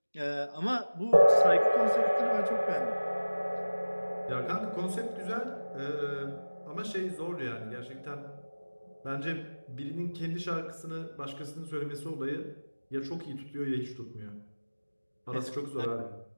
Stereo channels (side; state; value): both; inverted; correlation -1.00